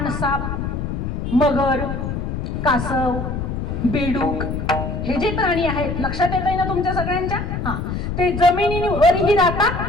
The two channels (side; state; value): left; noise; rumble, 4 dB below the sound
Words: मगर, कासव, बेडूक हे जे प्राणी आहेत, लक्षात येत आहे ना तुमच्या सगळ्यांच्या? हा, ते जमिनीवरही